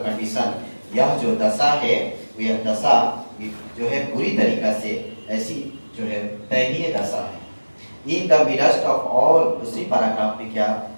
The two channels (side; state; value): both; inverted; correlation -1.00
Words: कंडीशन, यह जो दशा है, यह दशा जो है पूरी तरीका से ऐसी जो है दयनीय दशा है। In the midst of all, दूसरी पैराग्राफ में क्या